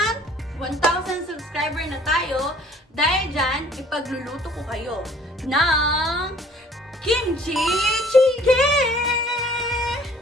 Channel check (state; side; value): normal; both; correlation 0.54